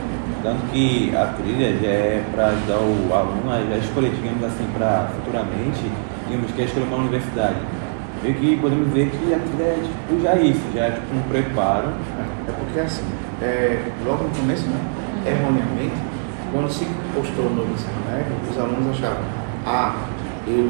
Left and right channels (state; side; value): silent; left; 56 dB below the other